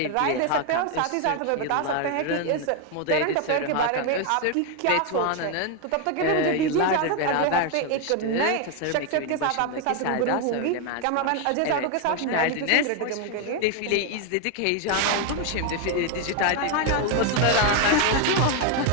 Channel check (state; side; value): different; both; correlation 0.01